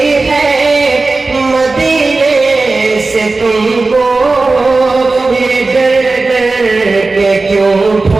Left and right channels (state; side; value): quieter; left; 3.6 dB